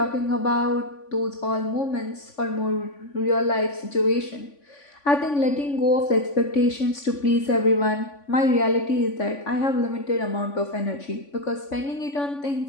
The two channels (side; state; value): right; late; 3.5 ms